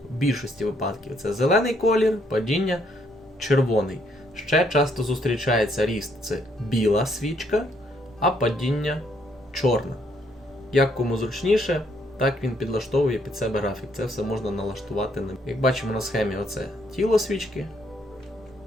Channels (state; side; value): normal; both; correlation 0.70